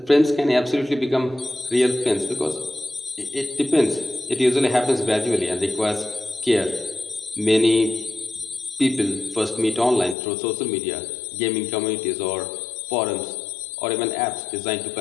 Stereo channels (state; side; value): drops out; right; at 10.2 s